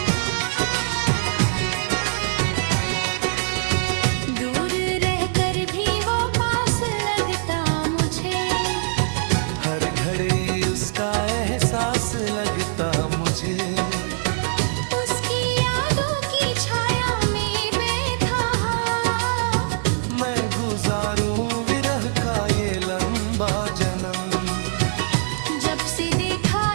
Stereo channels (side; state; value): left; silent; digital silence